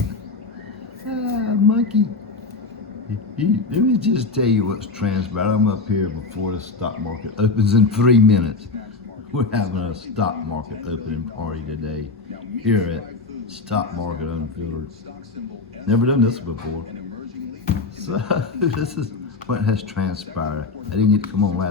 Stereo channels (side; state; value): right; quieter; 3.9 dB